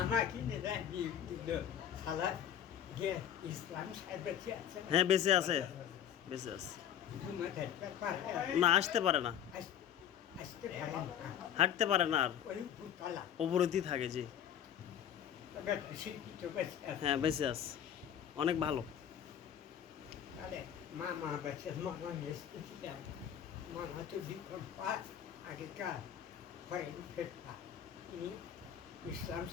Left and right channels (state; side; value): quieter; right; 9.7 dB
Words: আমাকে সালা গিয়ে ইসলাম সাহেব বেঁচে আছে। হ্যাঁ বেঁচে আছে, বেঁচে আছে। না আসতে পারে না, আসতে পারে না, হাঁটতে পারে না, আর ওই ভূতলা অবরোধই থাকে। জি শিল্পী তো বেঁচে আছে। হ্যাঁ বেঁচে আছে, অনেক ভালো। তাহলে মা বেঁচে মামা এসেছিলাম। মামা তো বিক্রম পাঠ আগেকার ফরেন ফেরতা, তিনি ইসলাম